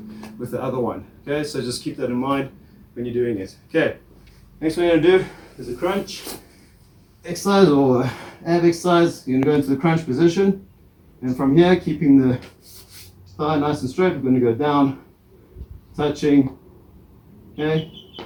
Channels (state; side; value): identical; both; correlation 1.00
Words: with the other one. Okay, so just keep that in mind when you're doing it. Okay, next one you're going to do is a crunch exercise or ab exercise. You're going to go into the crunch position, and from here, keeping the thigh nice and straight, we're going to go down, touching, okay,